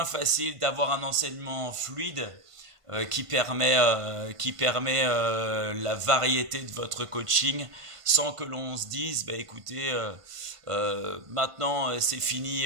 facile d'avoir un enseignement fluide qui permet la variété de votre coaching sans que l'on se dise écoutez maintenant c'est fini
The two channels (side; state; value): left; late; 1.5 ms